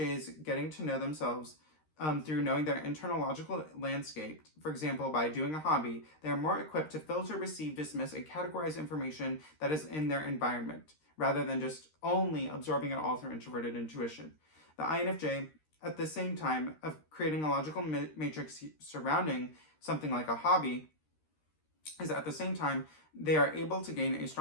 getting to know themselves through knowing their internal logical landscape, for example, by doing a hobby, they are more equipped to filter, receive, dismiss, and categorize information that is in their environment, rather than just only absorbing it all through introverted intuition. The INFJ, at the same time of creating a logical matrix surrounding something like a hobby, is at the same time they are able to gain a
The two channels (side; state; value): right; late; 13 ms